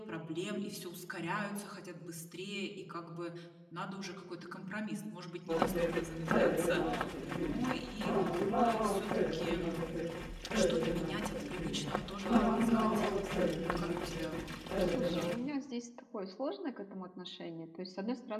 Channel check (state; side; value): identical; both; correlation 1.00